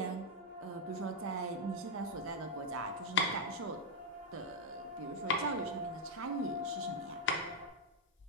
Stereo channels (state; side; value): normal; both; correlation -0.02